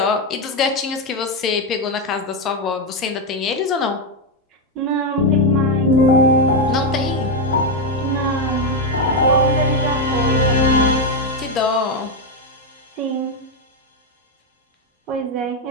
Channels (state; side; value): normal; both; correlation 0.04